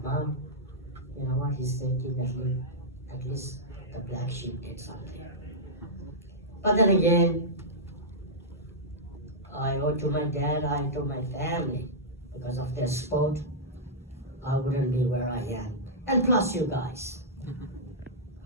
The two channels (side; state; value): both; normal; correlation -0.11